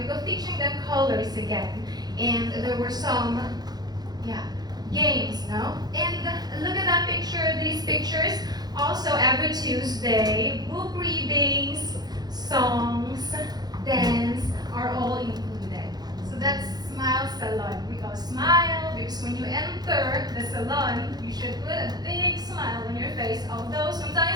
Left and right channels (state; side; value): late; left; 0.19 ms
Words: of teaching them colors again. And there were some, games, no? And look at that picture, these pictures. Also, every Tuesday, book readings, songs, dance are all included. So that's Smile Salon. We call Smile because when you enter after the salon, you should put a big smile on your face, although